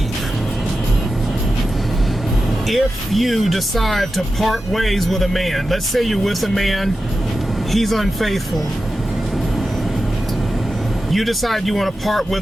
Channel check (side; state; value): both; normal; correlation 0.92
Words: If you decide to part ways with a man, let's say you're with a man, he's unfaithful. You decide you want to part